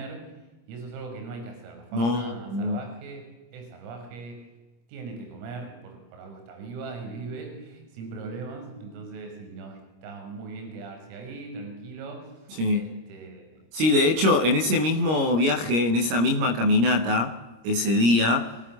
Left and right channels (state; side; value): late; left; 26 ms